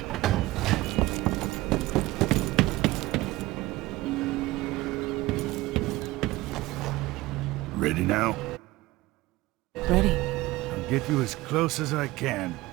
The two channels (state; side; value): quieter; left; 18.9 dB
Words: Ready now? Ready. I'll get you as close as I can.